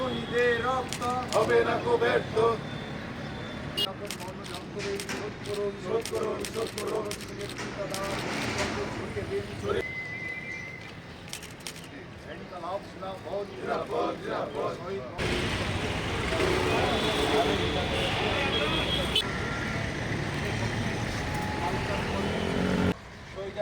রক্ত হবে না কো ব্যর্থ। সকল মরণযন্ত্র ঋণ শোধ করুন, শোধ করুন, শোধ করুন। নেতৃত্বদান সর্বশক্তিকে দিন শরীর ইনকালাব জিন্দাবাদ, জিন্দাবাদ, জিন্দাবাদ। শহীদ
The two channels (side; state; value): both; identical; correlation 1.00